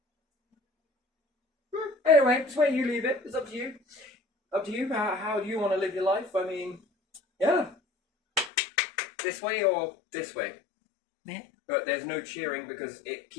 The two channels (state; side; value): drops out; right; at 8.5 s